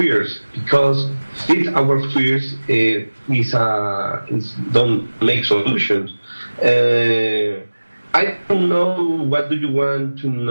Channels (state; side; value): inverted; both; correlation -1.00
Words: because feed our fears don't make solutions. I don't know what do you want to